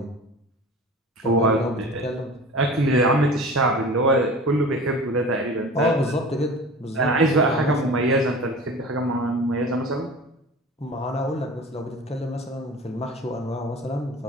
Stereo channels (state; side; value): normal; both; correlation 0.38